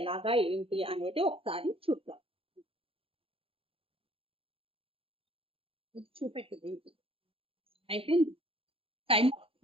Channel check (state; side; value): late; left; 0.27 ms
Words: ఎలాగా ఏంటి అనేది ఒకసారి చూద్దాం. చూపెట్టింది అయిపోయింది టైం.